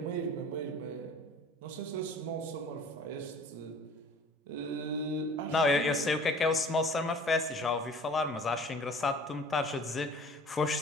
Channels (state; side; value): normal; both; correlation 0.47